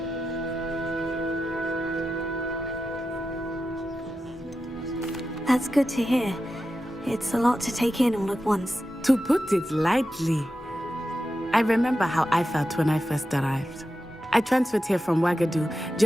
That's good to hear. It's a lot to take in all at once. To put it lightly, I remember how I felt when I first arrived. I transferred here from Ouagadougou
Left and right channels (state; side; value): normal; both; correlation 0.91